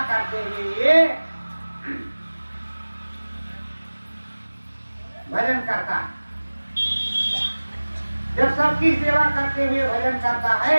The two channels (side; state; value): both; inverted; correlation -1.00